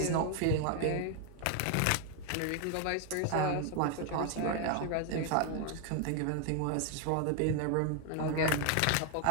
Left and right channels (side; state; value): both; different; correlation 0.01